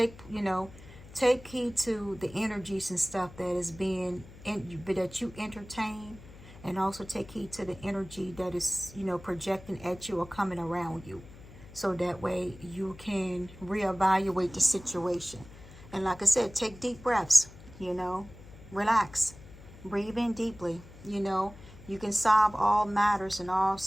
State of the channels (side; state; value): left; noise; hum, 18 dB below the sound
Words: heed to the energies and stuff that is that you entertain, and also take heed to the energy that is, projecting at you or coming around you. So that way you can reevaluate the situation. And like I said, take deep breaths, relax, breathe in deeply, you can solve all matters in all